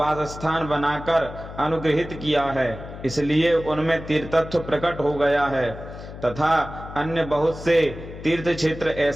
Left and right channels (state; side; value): noise; left; hum, 13 dB below the sound